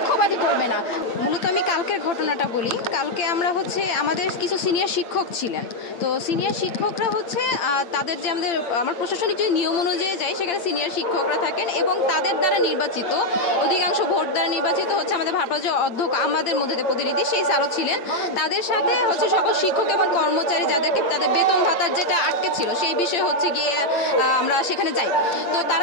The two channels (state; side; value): late; right; 8.8 ms